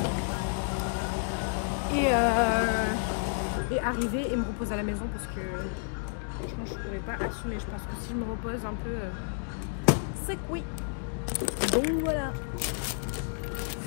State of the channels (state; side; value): silent; right; digital silence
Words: et arriver et me reposer à la maison parce que franchement je pourrais pas assumer. Je pense que si je me repose un peu c'est que oui. Donc voilà.